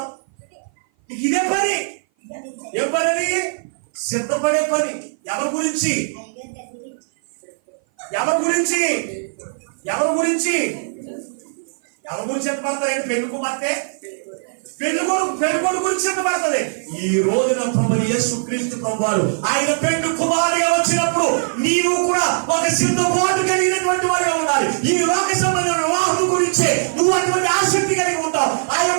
ఇదే పని. ఏ పని అది? సిద్ధపడే పని. ఎవరి గురించి? ఎవరి గురించి? ఎవరి గురించి? ఎవరి గురించి సిద్ధపడతారు? పెళ్లి కుమార్తె పెళ్లి గురించి సిద్ధపడుతుంది. ఈ రోజున ప్రభు యేసుక్రీస్తు ప్రభువారు ఆయన పెళ్లి కుమారుగా వచ్చినప్పుడు నీవు కూడా ఒక సిద్ధపాటు కలిగినటువంటి వారిగా ఉండాలి. ఈ లోక సంబంధమైన వివాహం గురించి నువ్వు అటువంటి ఆసక్తి కలిగి ఉంటావు, ఆ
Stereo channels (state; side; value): silent; left; 57 dB below the other